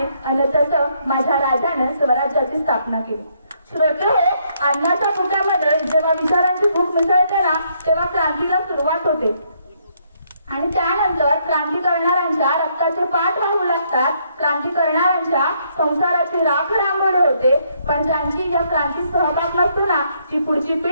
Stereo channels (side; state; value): both; inverted; correlation -0.72